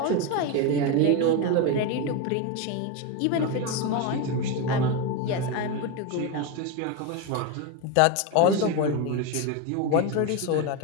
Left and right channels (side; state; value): both; different; correlation 0.03